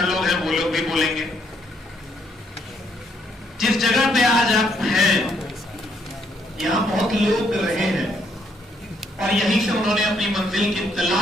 लोग हैं वो लोग भी बोलेंगे। जिस जगह पे आज आप हैं यहाँ बहुत लोग रहे हैं और यहीं से उन्होंने अपनी मंजिल की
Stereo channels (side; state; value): both; normal; correlation 0.72